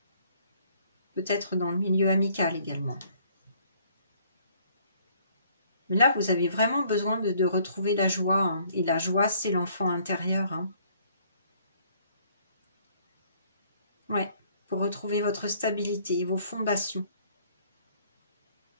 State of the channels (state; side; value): inverted; both; correlation -0.62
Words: Peut-être dans le milieu amical également. Mais là, vous avez vraiment besoin de retrouver la joie. Hein. Et la joie, c'est l'enfant intérieur. Hein. Ouais, pour retrouver votre stabilité, vos fondations.